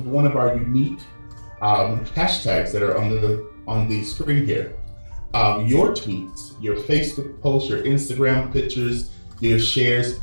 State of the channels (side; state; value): both; inverted; correlation -1.00